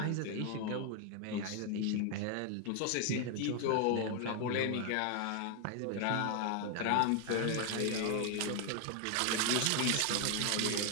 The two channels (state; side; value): different; both; correlation 0.00